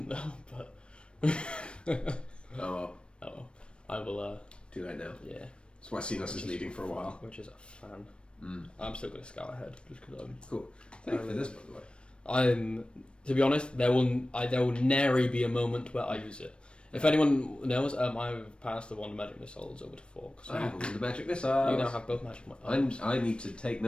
know, but Oh well. oh well. I will. Too late now. Yeah, That's why Cenos is leading for a while. which is a fan. Mm. I'm still going to scout ahead just because I'm. Cool. Thank you for this, by the way. I'm. To be honest, there will nary be a moment where I use it. If anyone knows, I've passed the Wonder Magic Missiles over to Fork. So I have the magic missile. you now have both magic missiles. I need to take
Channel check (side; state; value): right; late; 0.057 ms